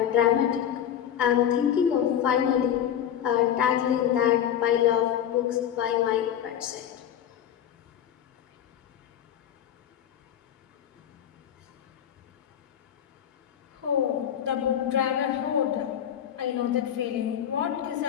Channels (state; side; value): quieter; right; 9.9 dB